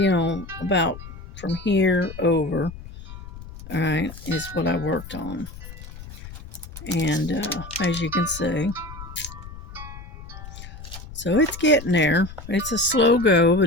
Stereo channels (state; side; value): noise; left; rumble, 14 dB below the sound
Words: about from here over. All right, is what I worked on. And as you can see, so it's getting there. It's a slow go,